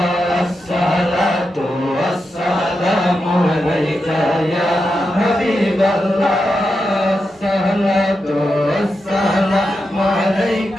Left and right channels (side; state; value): both; normal; correlation 0.87